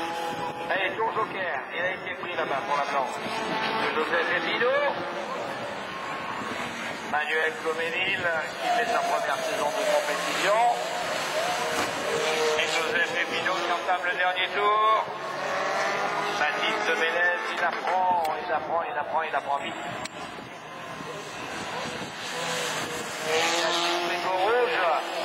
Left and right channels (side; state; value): both; identical; correlation 1.00